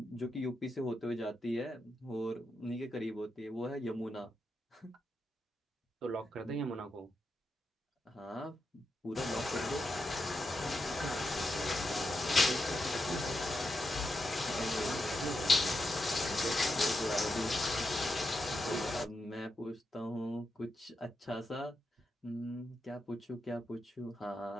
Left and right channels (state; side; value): normal; both; correlation 0.86